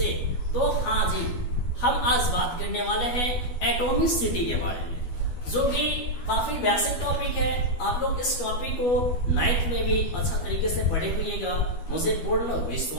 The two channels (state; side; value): late; right; 12 ms